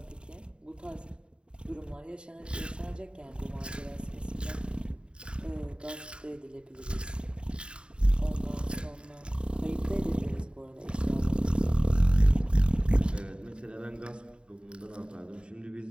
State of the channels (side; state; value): left; late; 0.052 ms